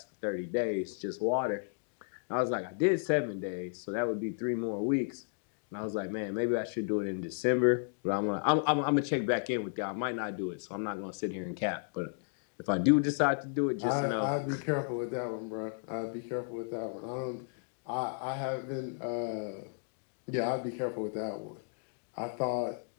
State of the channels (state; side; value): silent; right; digital silence